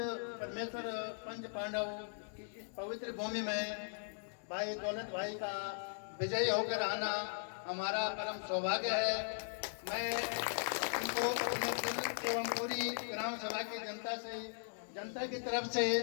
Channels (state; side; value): silent; right; 52 dB below the other